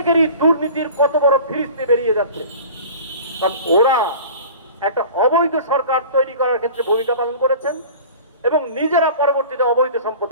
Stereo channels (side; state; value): both; inverted; correlation -0.41